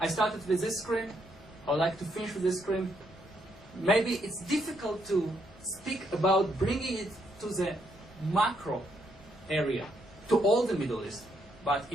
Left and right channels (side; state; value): both; normal; correlation 0.75